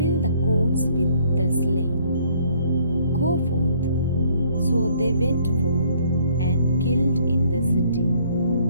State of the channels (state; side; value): inverted; both; correlation -0.63